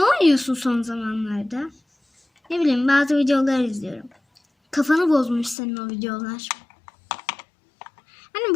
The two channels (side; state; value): right; drops out; at 5.6 s